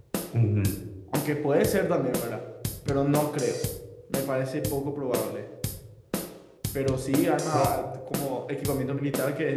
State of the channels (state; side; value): identical; both; correlation 1.00